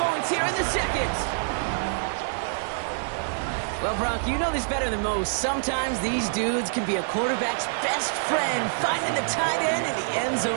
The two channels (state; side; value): silent; left; digital silence